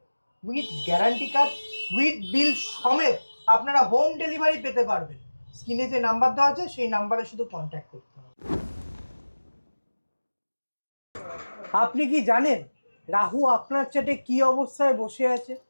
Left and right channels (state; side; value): inverted; both; correlation -1.00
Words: উইথ গ্যারান্টি কার্ড উইথ বিল সমেত আপনারা হোম ডেলিভারি পেতে পারবেন। স্ক্রিনে যে নাম্বার দেওয়া আছে সেই নাম্বারে শুধু কন্ট্যাক্ট করতে হবে। আপনি কি জানেন রাহু আপনার চাটে কি অবস্থায় বসে আছে?